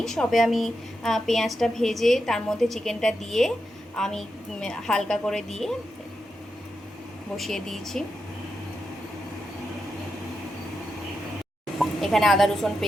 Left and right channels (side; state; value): both; normal; correlation 0.87